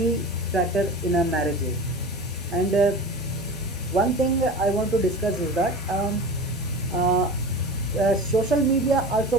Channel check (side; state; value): both; normal; correlation 0.34